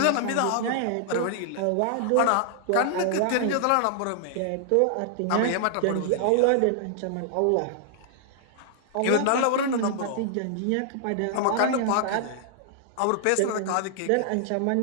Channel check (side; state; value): both; different; correlation -0.01